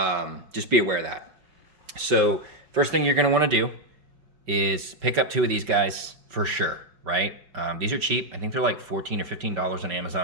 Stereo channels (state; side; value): late; left; 5.3 ms